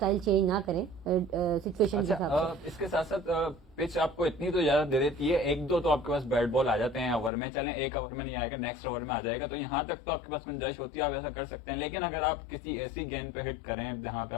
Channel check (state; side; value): drops out; right; at 7.3 s